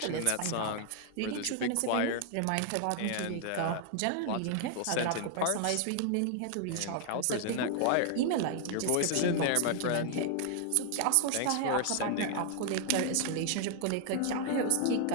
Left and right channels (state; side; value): different; both; correlation 0.00